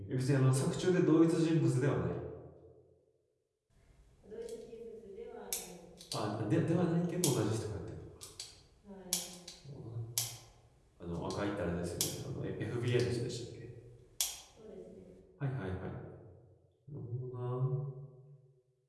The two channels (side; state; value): both; identical; correlation 1.00